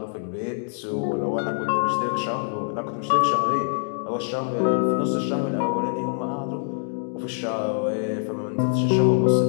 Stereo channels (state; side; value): silent; right; digital silence